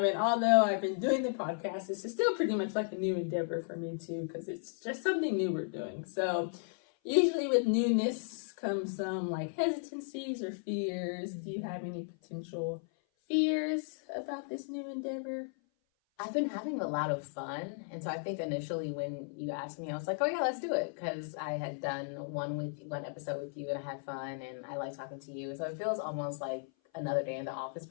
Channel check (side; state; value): right; silent; 54 dB below the other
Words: although I've been doing the podcast, this is still pretty much like a new endeavor for me too, because it's just something new we're doing. So usually with newness come some like hesitancies or fears. Do you have any potential fears about this new endeavor? I've been having a lot of fun. And so I think initially when you asked me, I was like, oh yeah, let's do it. Because I had done one episode with you and I had fun and I like talking to you. So it feels almost like another day in the office,